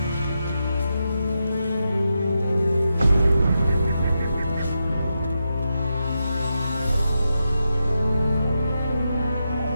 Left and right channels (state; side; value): inverted; both; correlation -0.86